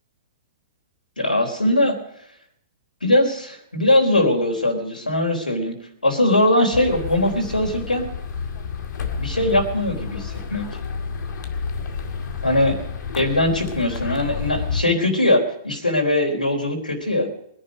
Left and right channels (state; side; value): inverted; both; correlation -0.60